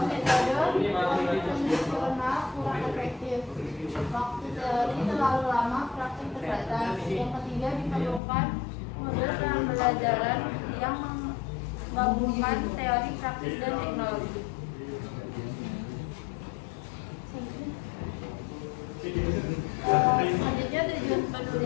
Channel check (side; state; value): right; drops out; at 8.2 s